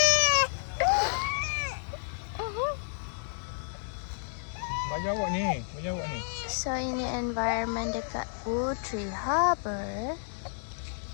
Banyak awak ni. So ini environment dekat Putri Harbour.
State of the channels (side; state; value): right; silent; 57 dB below the other